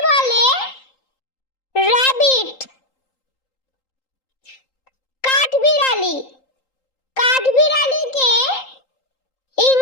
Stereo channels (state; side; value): late; right; 3.8 ms